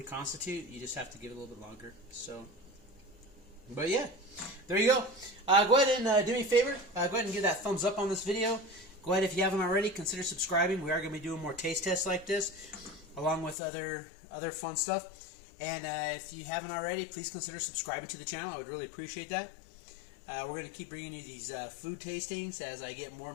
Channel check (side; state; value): right; drops out; at 13.6 s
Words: You just have to give it a little bit longer. So, but yeah, there you go. Go ahead and do me a favor. Go ahead and give that thumbs up on this video. Go ahead, if you haven't already, consider subscribing. We are going to be doing more taste tests like this, along with other fun stuff. And if you haven't already, please consider subscribing to the channel. I would really appreciate that. We're going to keep bringing you these food tastings as I get more